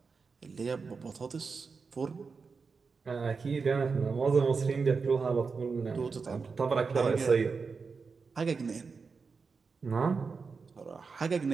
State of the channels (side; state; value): left; quieter; 4.9 dB